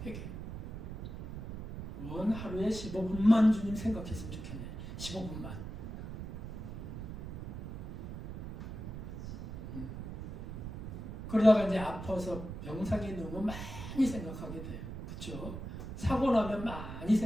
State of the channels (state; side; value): noise; right; rumble, 8 dB below the sound